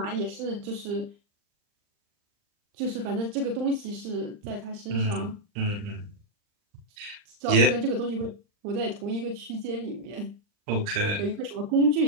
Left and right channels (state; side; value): late; left; 39 ms